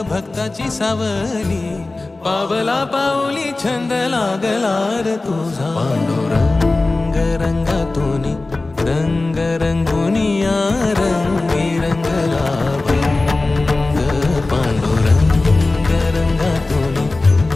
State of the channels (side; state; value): right; quieter; 3.2 dB